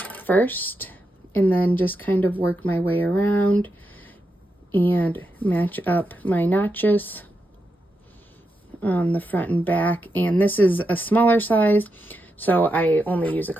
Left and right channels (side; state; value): both; normal; correlation 0.86